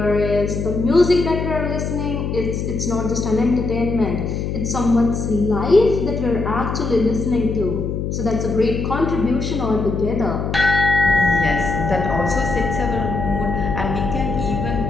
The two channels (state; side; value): noise; left; hum, 3 dB below the sound